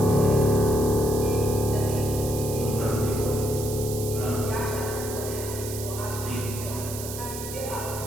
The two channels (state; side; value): noise; right; hiss, 9 dB below the sound